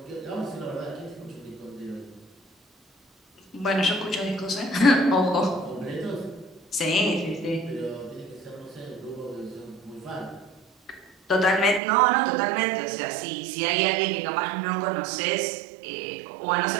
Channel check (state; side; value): drops out; left; at 11.8 s